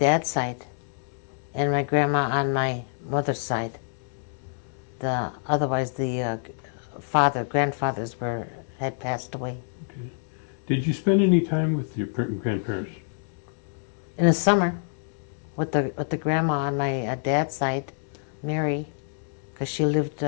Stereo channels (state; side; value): silent; right; digital silence